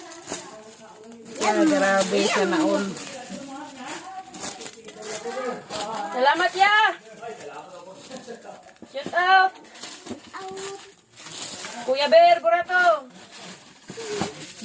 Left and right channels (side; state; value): both; identical; correlation 1.00